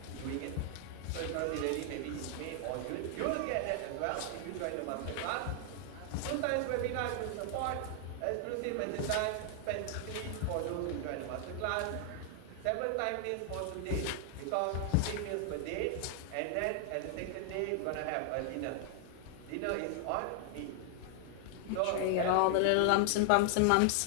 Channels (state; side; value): different; both; correlation 0.00